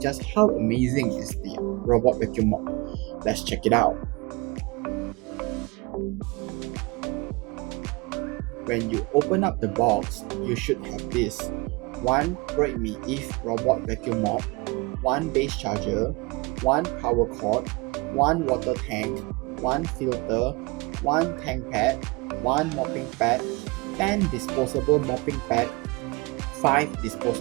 just how amazing is the robot vacuum mop. Let's check it out. When you open up the box, you should have this: one Roidme Eve robot vacuum mop, one base charger, one power cord, one water tank, one filter, one tank pad, one mopping pad, 10 disposable mopping pad, 5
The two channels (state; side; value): quieter; left; 25.8 dB